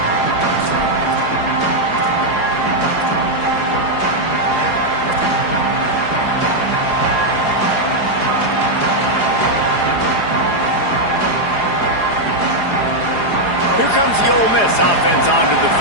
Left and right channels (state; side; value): late; right; 4.8 ms